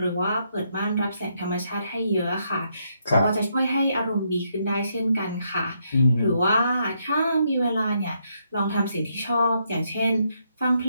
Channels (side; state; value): both; inverted; correlation -0.76